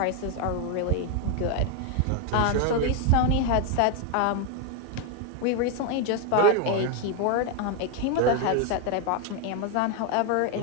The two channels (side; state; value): both; different; correlation 0.01